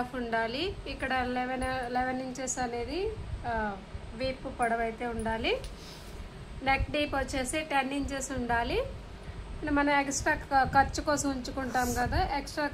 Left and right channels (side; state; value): both; identical; correlation 1.00